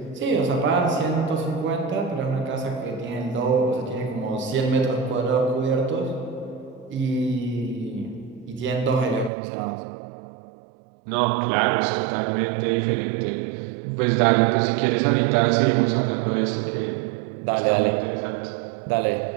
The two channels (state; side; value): drops out; left; at 9.3 s